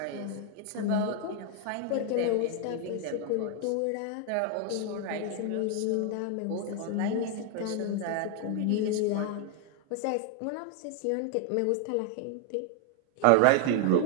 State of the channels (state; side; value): different; both; correlation 0.00